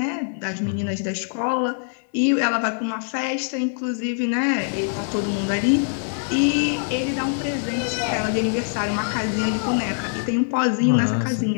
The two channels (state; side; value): silent; right; digital silence